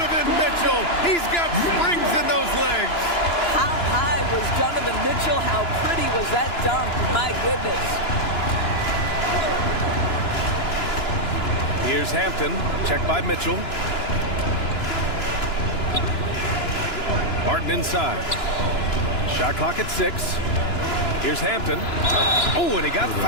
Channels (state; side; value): late; right; 2.9 ms